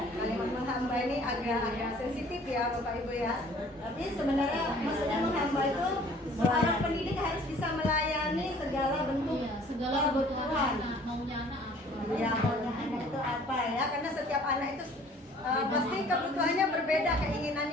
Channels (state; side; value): normal; both; correlation 0.53